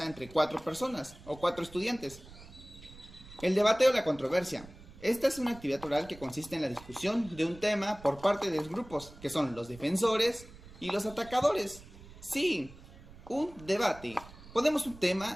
entre 4 personas o 4 estudiantes. El debate o la controversia. Esta es una actividad oral que consiste en la discusión de un tema por parte de los grupos, que son los defensores y los atacadores. Sí, un debate. Ponemos un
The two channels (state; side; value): noise; right; rumble, 19 dB below the sound